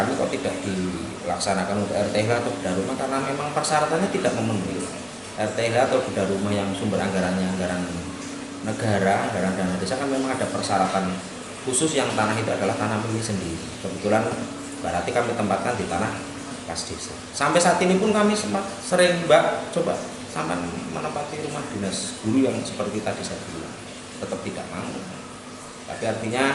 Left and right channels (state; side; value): identical; both; correlation 1.00